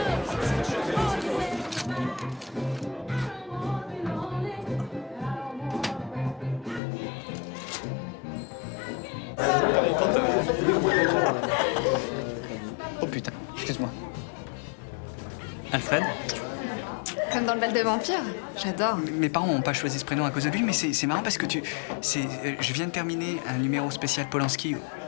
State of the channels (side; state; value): right; drops out; at 6.8 s